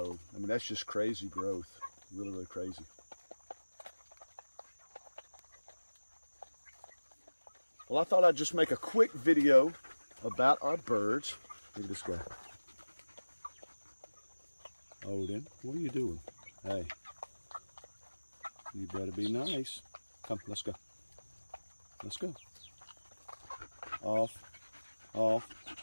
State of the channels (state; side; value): inverted; both; correlation -1.00